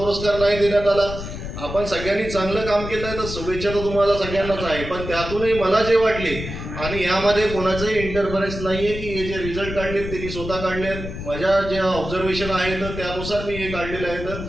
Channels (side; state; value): left; noise; rumble, 8 dB below the sound